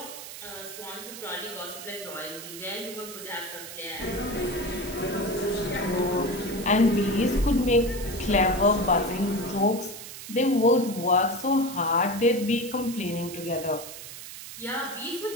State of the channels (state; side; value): noise; right; hiss, 12 dB below the sound